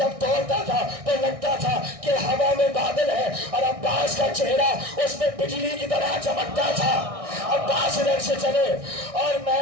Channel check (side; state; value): left; late; 1.6 ms